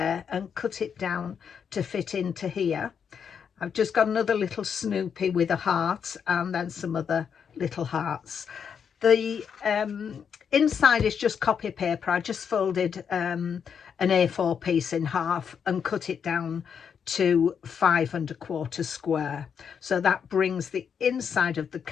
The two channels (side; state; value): right; quieter; 7.2 dB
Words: and cut it down to fit into here. I've just got another little Snoopy with a heart and then some other little hearts. The inside is just copy paper. I just folded an A4 piece in half and cut it down to 5 1/4 square. So that brings the inside of the